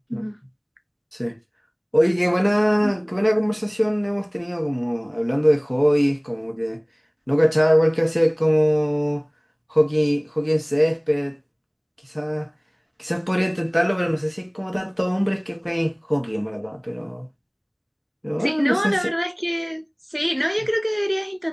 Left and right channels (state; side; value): identical; both; correlation 1.00